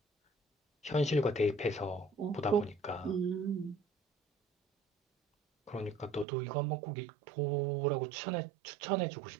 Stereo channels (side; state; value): left; drops out; at 6.2 s